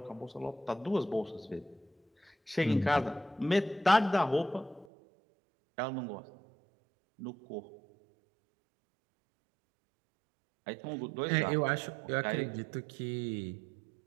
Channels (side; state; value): left; drops out; at 4.9 s